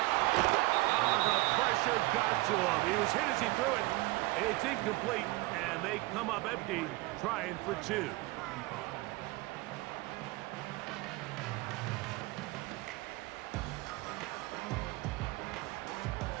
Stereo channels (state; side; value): quieter; left; 21.3 dB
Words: Oh, the pressure got to him. He was hit as he threw it. It's incomplete, and they come up empty, trying for 2.